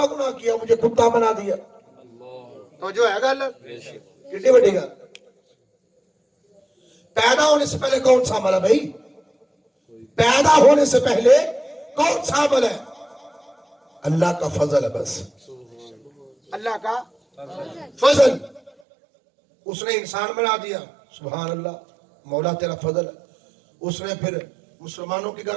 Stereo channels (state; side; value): drops out; left; at 18.7 s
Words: گناہ کیا مجھے کتا بنا دیا تو جو ہے گل کتنی بڑی گل پیدا ہونے سے پہلے کون سا عمل ہے بھائی پیدا ہونے سے پہلے کون سا عمل ہے اللہ کا فضل ہے بس اللہ کا فضل اس نے انسان بنا دیا سبحان اللہ مولا تیرا فضل ہے اس نے پھر مسلمانوں کے